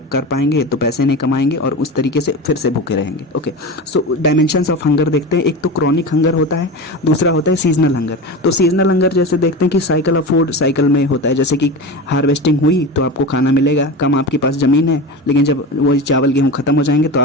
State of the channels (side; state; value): both; normal; correlation 0.26